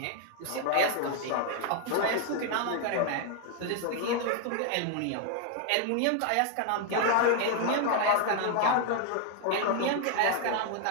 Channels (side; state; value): both; different; correlation 0.00